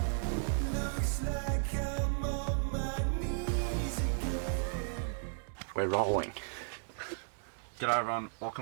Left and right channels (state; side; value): silent; left; digital silence